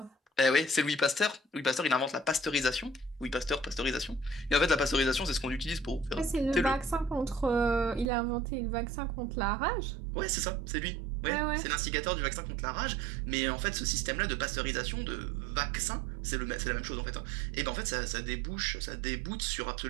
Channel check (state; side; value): drops out; left; at 8.1 s